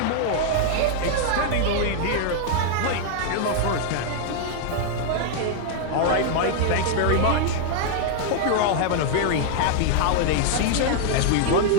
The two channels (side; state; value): both; different; correlation 0.00